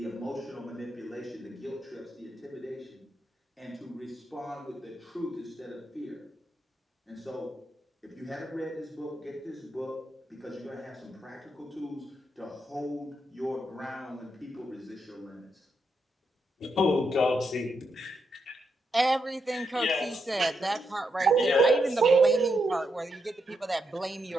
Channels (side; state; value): both; normal; correlation 0.82